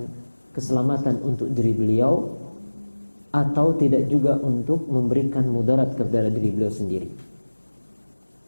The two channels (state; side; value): inverted; both; correlation -1.00